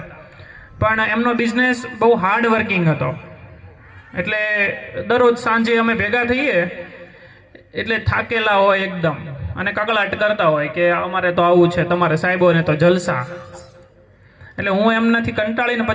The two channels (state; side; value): identical; both; correlation 1.00